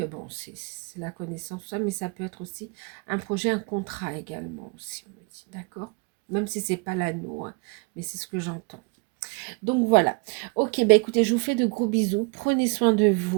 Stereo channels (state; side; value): quieter; left; 30.0 dB